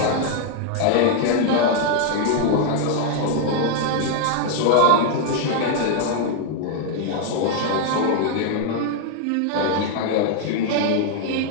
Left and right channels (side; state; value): both; different; correlation 0.00